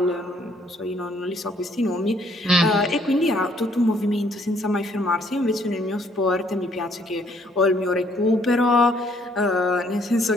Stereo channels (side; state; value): both; normal; correlation 0.65